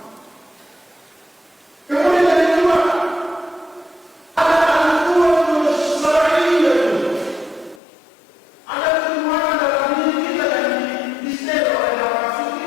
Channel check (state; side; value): drops out; right; at 7.8 s